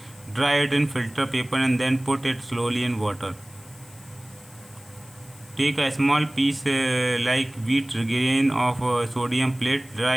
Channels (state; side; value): noise; left; hiss, 23 dB below the sound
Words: dry it in filter paper and then put it slowly in water. Take a small piece like wheat grain of sodium plate,